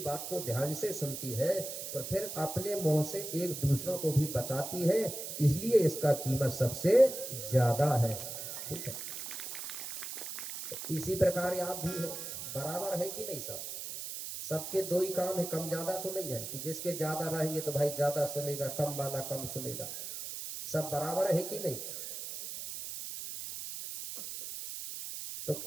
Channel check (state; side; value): noise; right; hiss, 7 dB below the sound